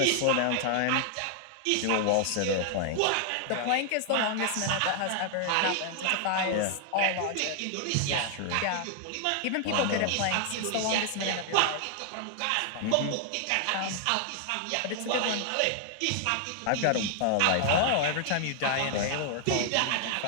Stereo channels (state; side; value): different; both; correlation 0.00